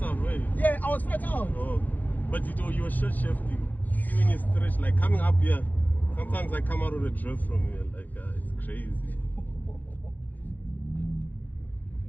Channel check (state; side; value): late; right; 0.082 ms